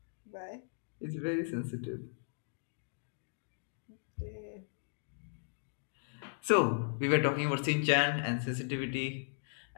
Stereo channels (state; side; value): silent; right; digital silence